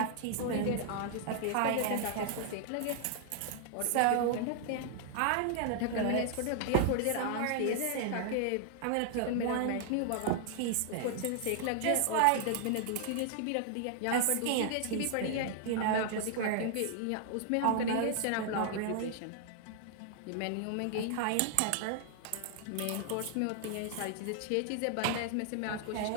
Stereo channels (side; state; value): both; different; correlation -0.01